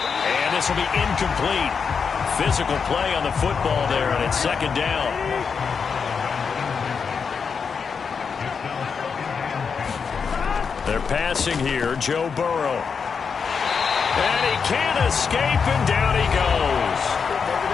this will be incomplete. Physical play on the football there, and it's second down. They're passing here, Joe Burrow. And he can't escape, and down he goes.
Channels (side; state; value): right; quieter; 5.9 dB